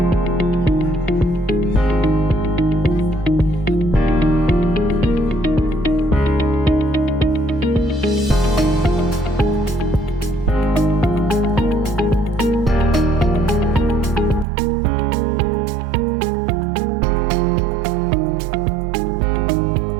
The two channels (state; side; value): drops out; left; at 14.5 s